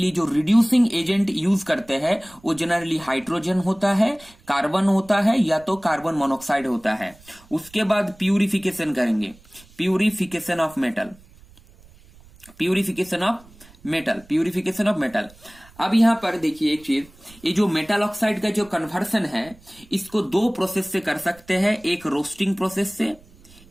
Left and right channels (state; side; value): noise; right; rumble, 25 dB below the sound